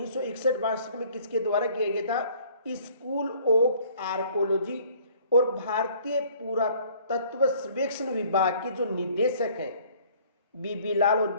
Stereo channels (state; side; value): inverted; both; correlation -0.56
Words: में किसके द्वारा किया गया था, स्कूल ऑफ आर्कोलॉजी और भारतीय पुरातत्व सर्वेक्षण विभाग के जो निदेशक हैं बीबी लाल और